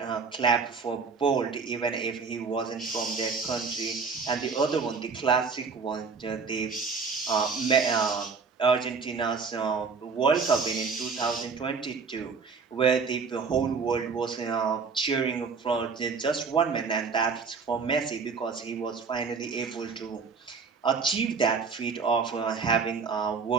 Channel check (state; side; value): quieter; left; 5.1 dB